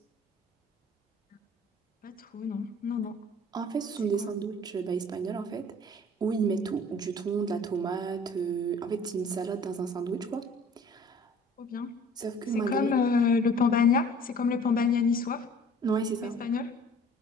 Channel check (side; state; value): both; normal; correlation 0.50